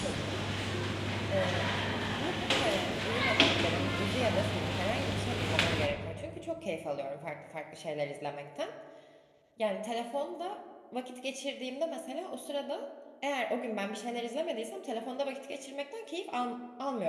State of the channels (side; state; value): both; identical; correlation 1.00